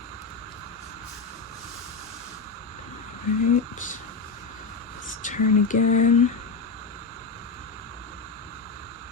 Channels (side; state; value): right; quieter; 4.3 dB